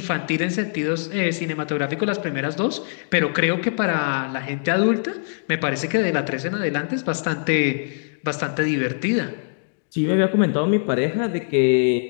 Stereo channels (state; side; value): silent; right; digital silence